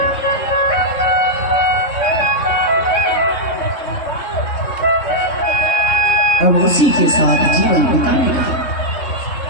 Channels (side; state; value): right; late; 3.6 ms